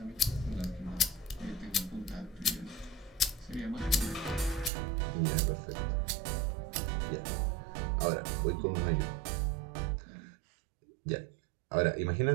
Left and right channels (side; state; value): left; drops out; at 4.7 s